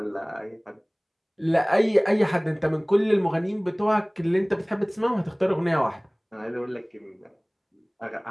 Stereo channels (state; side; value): identical; both; correlation 1.00